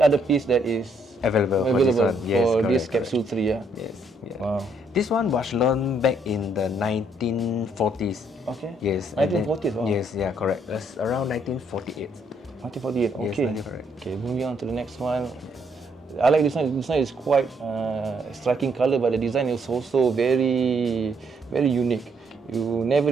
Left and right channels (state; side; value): normal; both; correlation 0.71